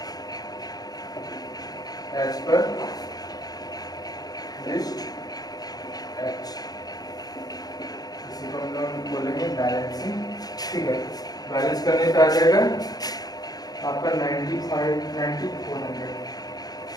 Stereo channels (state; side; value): late; right; 0.19 ms